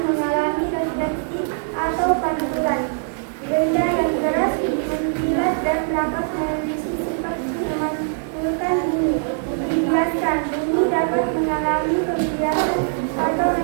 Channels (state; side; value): silent; left; digital silence